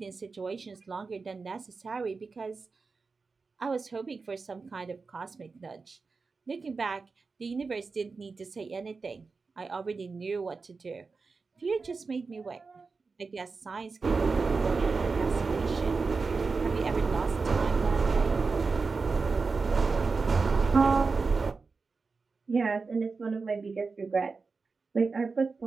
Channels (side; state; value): left; quieter; 4.4 dB